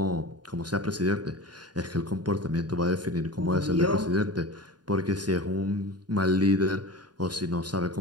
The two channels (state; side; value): late; left; 0.70 ms